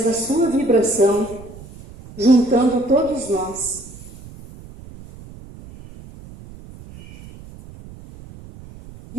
da sua vibração, juntando todos nós.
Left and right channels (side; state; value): right; noise; rumble, 18 dB below the sound